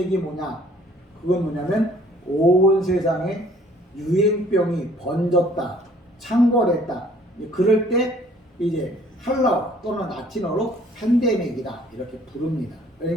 뭐냐? 그건 뭐냐면 온 세상에 유행병이 번졌다, 창궐했다. 그럴 때 이제 헬라어 또는 라틴어로 팬데믹이다 이렇게 부릅니다.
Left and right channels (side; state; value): both; normal; correlation 0.57